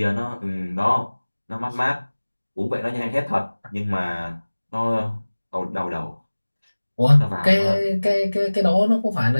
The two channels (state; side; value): inverted; both; correlation -1.00